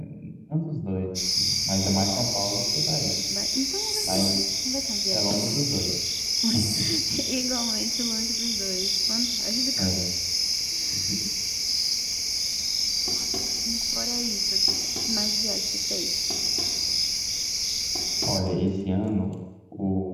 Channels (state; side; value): identical; both; correlation 1.00